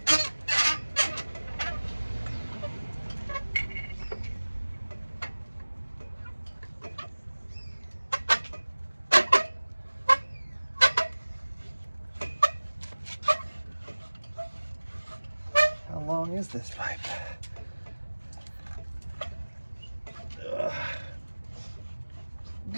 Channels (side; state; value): both; inverted; correlation -1.00